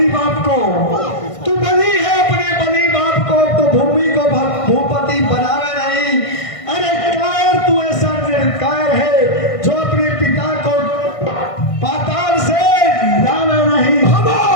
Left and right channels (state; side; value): late; right; 1.5 ms